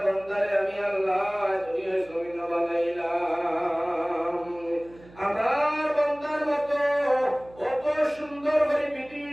বান্দারে আমি আল্লাহ দুনিয়ার জমিন বানাইলাম। আমার বান্দার মতো কত সুন্দর করে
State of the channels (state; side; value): noise; right; hum, 23 dB below the sound